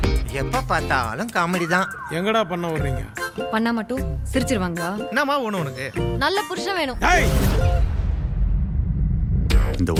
எப்ப பார்த்தாலும் காமெடி தான். எங்கடா பண்ண வர்றீங்க? பண்ணா மட்டும் சிரிச்சிருவாங்களா? என்னம்மா ஒண்ணு உனக்கு? நல்ல புருஷன் வேணும். டேய், இந்த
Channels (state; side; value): identical; both; correlation 1.00